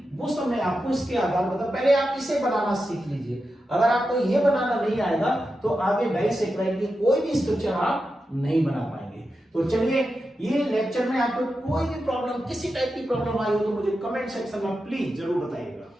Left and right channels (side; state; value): both; normal; correlation 0.89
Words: वो सब मैं आपको इसके आधार पर पहले आप इसे बनाना सीख लीजिए। अगर आपको ये बनाना नहीं आएगा तो आगे डाइसैकेराइड की कोई भी स्ट्रक्चर आप नहीं बना पाएंगे। तो चलिए, ये लेक्चर में आपको कोई भी प्रॉब्लम, किसी टाइप की प्रॉब्लम आई हो तो मुझे कमेंट सेक्शन में प्लीज जरूर बताइएगा।